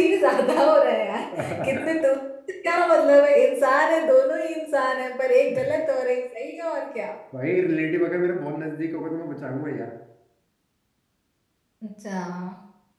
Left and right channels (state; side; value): identical; both; correlation 1.00